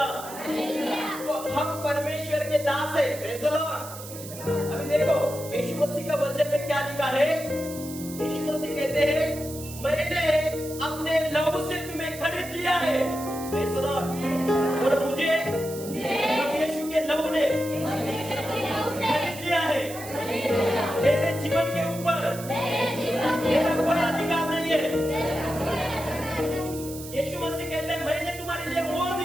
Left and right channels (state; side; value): noise; right; hiss, 13 dB below the sound